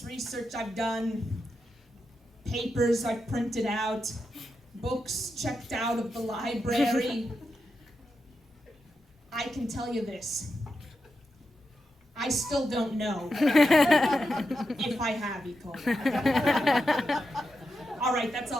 research I've done, papers I've printed out, books checked out of the library, I can tell you this. I still don't know if I have E. coli. All right, that's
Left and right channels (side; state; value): both; normal; correlation 0.87